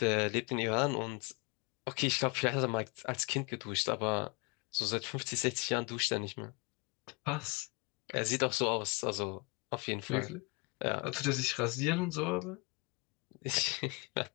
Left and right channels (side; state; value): right; quieter; 28.8 dB